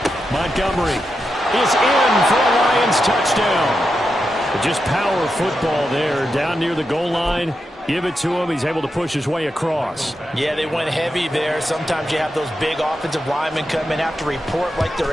Montgomery is in for a Lions touchdown. Just power football there, down near the goal line. Give it to him. He's able to push his way across. Yeah, they went heavy there. Sometimes you have those big offensive linemen come in, have to report like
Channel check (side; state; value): both; normal; correlation 0.87